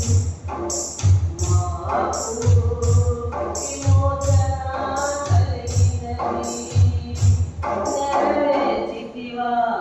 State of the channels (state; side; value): identical; both; correlation 1.00